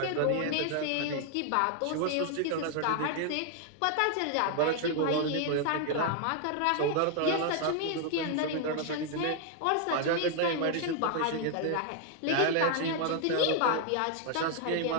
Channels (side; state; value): both; different; correlation 0.00